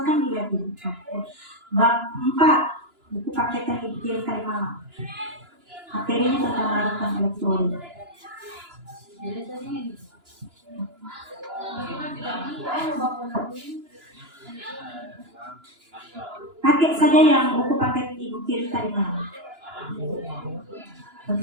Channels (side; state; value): left; late; 2.9 ms